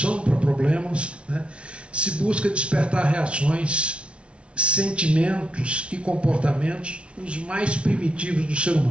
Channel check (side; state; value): left; late; 0.060 ms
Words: para problemas, né, se busca despertar reações, sentimentos e comportamentos os mais primitivos do ser